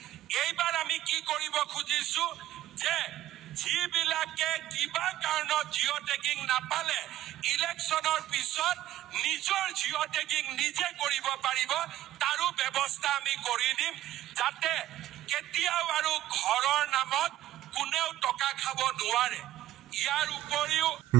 এইবাৰ আমি কি কৰিব খুজিছো যে যিবিলাকে কিবা কাৰণত জিঅ' টেগিং নাপালে ইলেকশ্যনৰ পিছত নিজৰ জিঅ' টেগিং নিজে কৰিব পাৰিব, তাৰো ব্যৱস্থা আমি কৰি দিম যাতে কেতিয়াও আৰু ঘৰৰ নামত কোনেও টকা খাব নোৱাৰে। ইয়াৰ উপৰিও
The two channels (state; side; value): quieter; left; 14.0 dB